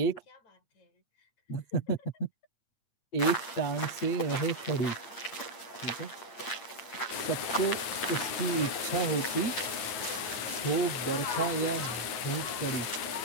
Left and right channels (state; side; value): late; right; 8.7 ms